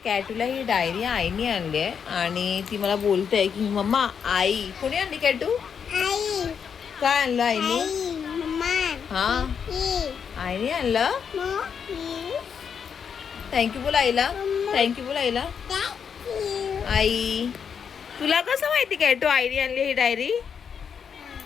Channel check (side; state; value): right; quieter; 7.1 dB